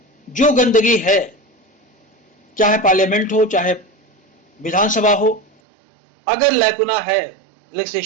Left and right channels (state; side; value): drops out; left; at 5.5 s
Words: जो गंदगी है, चाहे पार्लियामेंट हो चाहे विधानसभा हो, अगर लैकुना है